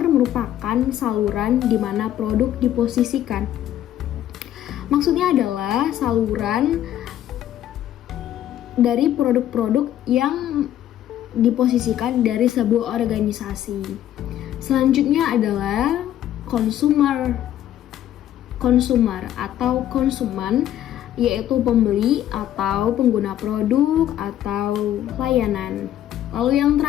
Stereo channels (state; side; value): quieter; right; 11.8 dB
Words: merupakan saluran di mana produk diposisikan. Maksudnya adalah saluran dari produk-produk yang diposisikan dari sebuah organisasi. Selanjutnya adalah consumer atau konsumen, yaitu pembeli atau pengguna produk atau layanan. Lalu yang